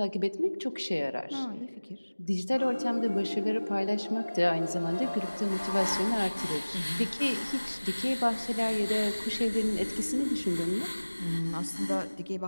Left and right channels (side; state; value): both; inverted; correlation -1.00